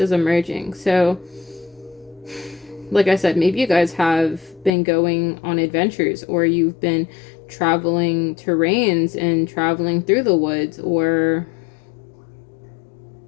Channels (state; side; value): drops out; right; at 4.7 s